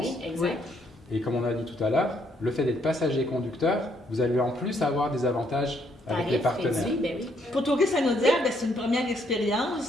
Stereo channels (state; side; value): normal; both; correlation 0.71